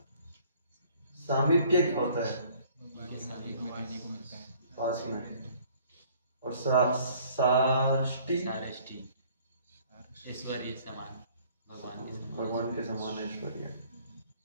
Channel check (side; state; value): both; inverted; correlation -0.57